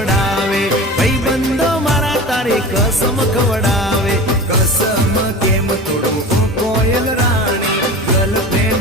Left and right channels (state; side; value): normal; both; correlation 0.33